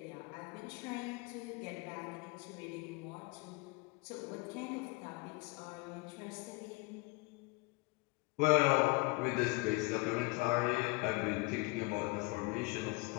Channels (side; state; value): right; quieter; 25.9 dB